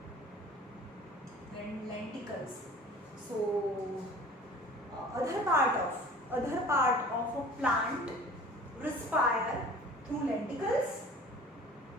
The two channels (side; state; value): both; normal; correlation 0.45